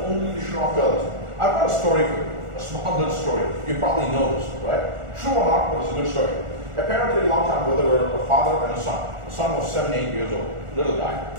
only to show off to others? I've got a story for you, a small little story. You probably know this, right? True or not, but it's a good story. Apparently, a long time ago, there were a father and a son. The son was 7, 8 years old, little guy,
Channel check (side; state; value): left; late; 1.4 ms